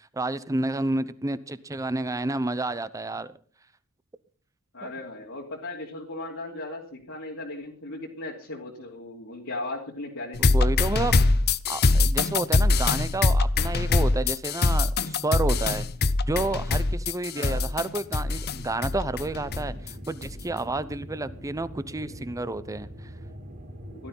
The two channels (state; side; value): normal; both; correlation 0.73